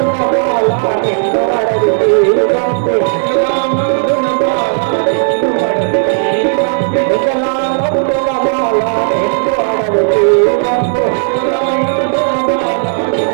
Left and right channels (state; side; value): silent; left; 69 dB below the other